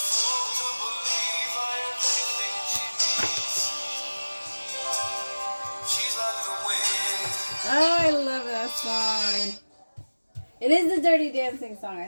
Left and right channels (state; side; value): inverted; both; correlation -1.00